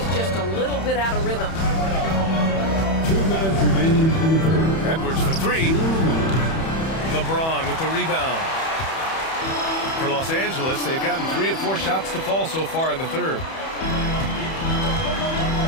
just a little bit out of rhythm. 2 minutes remaining in the third. Edwards for 3. LeBron with the rebound. For Los Angeles, they've gotten 3 of 4 shots to fall so far in the third.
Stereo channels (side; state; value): right; late; 31 ms